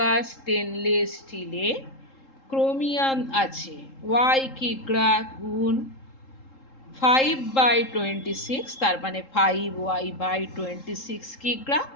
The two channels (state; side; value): late; right; 3.7 ms